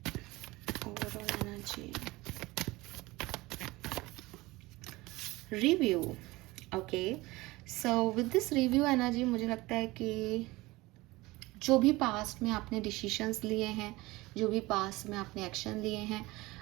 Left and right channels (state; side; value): quieter; left; 20.6 dB